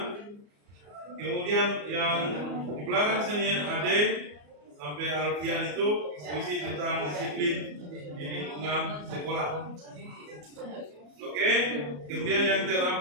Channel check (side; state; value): left; late; 34 ms